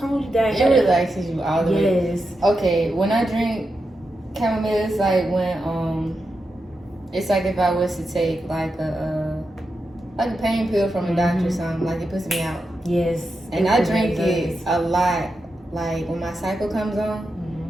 down. It relaxes you all the way. Yes. Okay, when I drink chamomile, it's like when it's like if I was to take like a pain pill from a doctor or something, like it puts me out. Yes. And I drink it a lot. Like when my cycle comes on,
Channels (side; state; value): both; normal; correlation 0.88